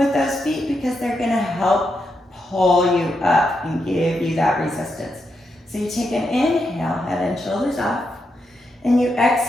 those feet because they're gonna help pull you up and give you that resistance. So you take an inhale, head and shoulders off, and you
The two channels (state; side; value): normal; both; correlation 0.83